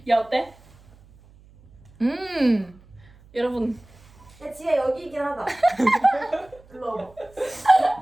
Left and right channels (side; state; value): right; noise; hum, 26 dB below the sound